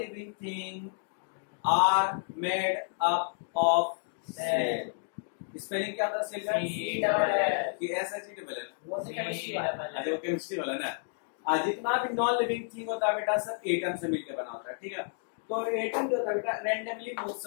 thing are made up of cell. Spelling क्या था सेल का? कि SHEL है, वो केमिस्ट्री वाला ना। जितना भी नॉन लिविंग थिंग होता है बेटा सब एटम से मिलकर बना होता है, ठीक है। तो एटम जो होता है बेटा रेंडमली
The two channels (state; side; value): silent; right; digital silence